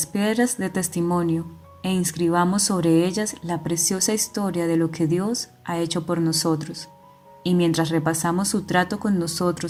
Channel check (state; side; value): identical; both; correlation 1.00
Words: piedras de testimonio e inscribamos sobre ellas la preciosa historia de lo que Dios ha hecho por nosotros. Y mientras repasamos su trato con